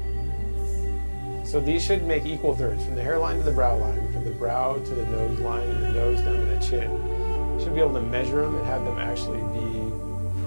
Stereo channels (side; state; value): both; inverted; correlation -1.00